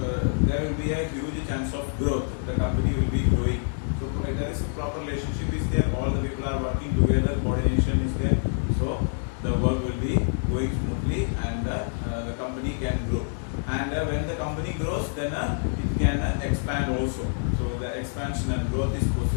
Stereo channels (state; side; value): silent; right; digital silence